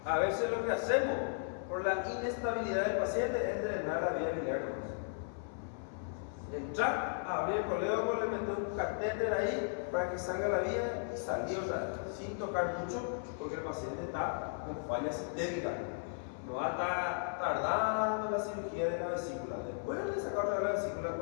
a veces lo que hacemos por la inestabilidad del paciente es drenar la vía biliar. Entrar, abrir el coledo, le meter un catéter ahí para que salga la vía y salir otra vez, sin tocar mucho, porque el paciente está con falla sistémica. No va a estar tardando la cirugía de la vesícula. Después de sacar otra vez la vesícula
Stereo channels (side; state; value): right; silent; 54 dB below the other